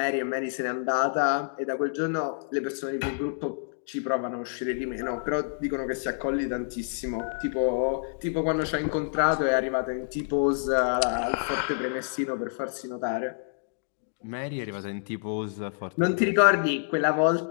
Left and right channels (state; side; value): silent; right; digital silence